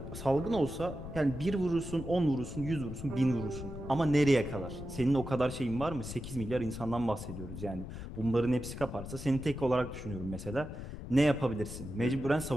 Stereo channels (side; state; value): left; noise; rumble, 10 dB below the sound